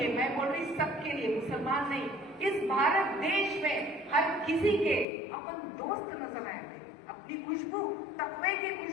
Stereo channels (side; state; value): right; drops out; at 5.1 s